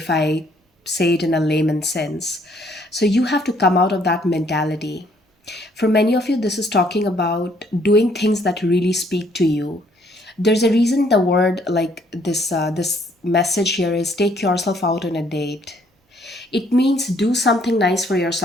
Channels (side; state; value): both; normal; correlation 0.65